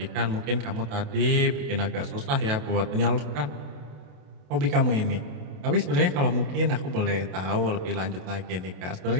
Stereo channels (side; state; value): left; late; 28 ms